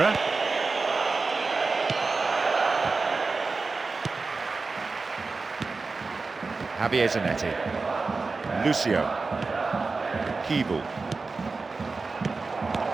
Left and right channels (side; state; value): left; quieter; 4.0 dB